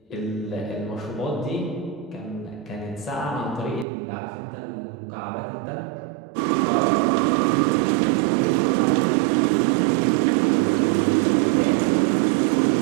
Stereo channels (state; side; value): drops out; left; at 3.9 s